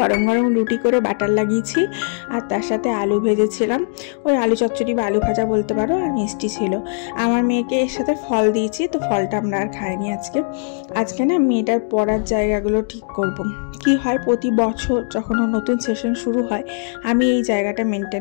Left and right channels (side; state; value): right; silent; 66 dB below the other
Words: গরম রুটি করে বাটার লাগিয়েছি, আর তার সাথে আলু ভেজেছিলাম, ওই আলু চচ্চড়ি বা আলু ভাজা বলতে পারো, আর মিষ্টি ছিল। আমার মেয়েকে এর সাথে ফল দিয়েছি, তো ফলটা আমরা আর খাইনি আজকে না মেয়েটার পড়ার জায়গাগুলো ঠিক করব। কি হয়, প্রতি বছর যখন নতুন সেশন শুরু হয়, আমি এই জায়গাটা